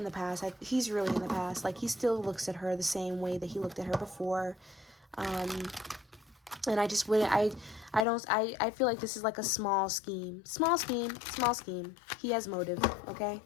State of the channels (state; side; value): drops out; right; at 8.1 s